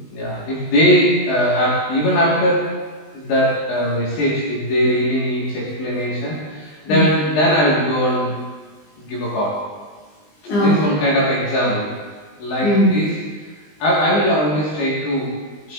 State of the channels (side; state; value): right; late; 20 ms